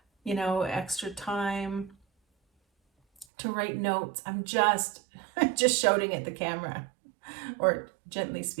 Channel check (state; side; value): drops out; left; at 3.2 s